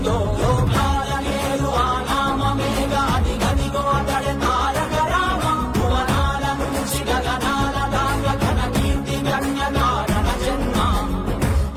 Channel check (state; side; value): identical; both; correlation 1.00